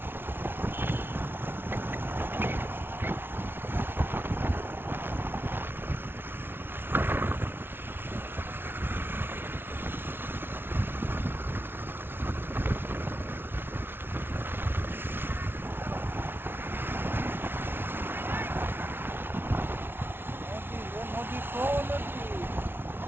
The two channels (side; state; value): left; late; 0.11 ms